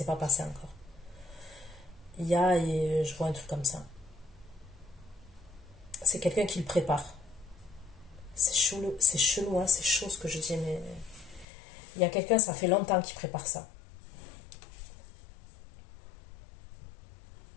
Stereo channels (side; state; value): right; drops out; at 11.5 s